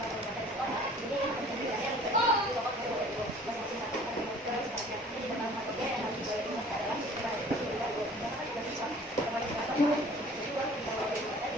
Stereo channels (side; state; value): both; normal; correlation 0.50